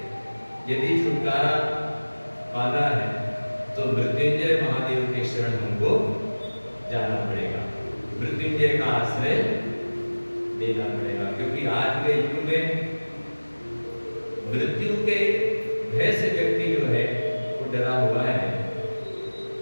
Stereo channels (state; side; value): inverted; both; correlation -1.00